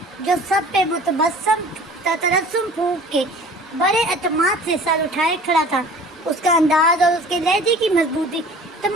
جو سب پہ متبسم تبسم پھونک کے بڑے اعتماد سے سر اٹھائے کھڑا تھا. اس کا انداز اور اس کے لہجے کی مضبوطی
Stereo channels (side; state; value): both; normal; correlation 0.45